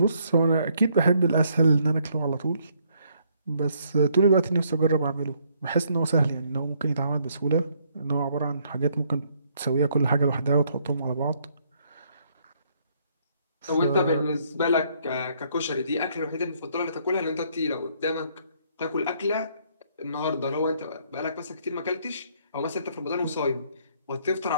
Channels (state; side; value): inverted; both; correlation -0.68